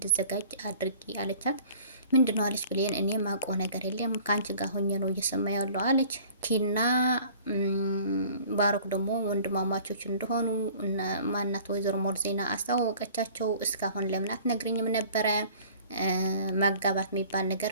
አድርጊ አለቻት። ምንድን ነው አለች ብሌን። እኔ ማውቀው ነገር የለም ከአንቺ ጋር ሆኜ ነው እየሰማ ያለው አለች። ኪና ባሮክ ደግሞ ወንድማማቾች እንደሆኑ ማናት ወይዘሮ ሞርዜና አስተዋወቀቻቸው። እስካሁን ለምን አትነግሪኝም ነበረ? ማጋባት የሚባል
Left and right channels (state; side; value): inverted; both; correlation -0.49